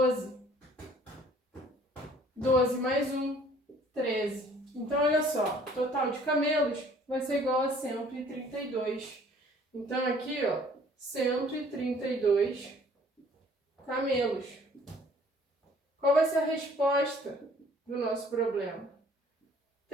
12 mais 1, 13. Então, olha só, o total de camelos vai ser igual a 132. Então, aqui, ó, 132 camelos. Qual vai ser a resposta do nosso problema?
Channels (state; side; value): normal; both; correlation 0.56